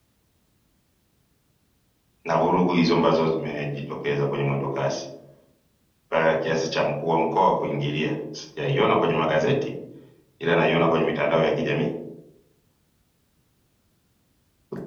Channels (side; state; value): both; identical; correlation 1.00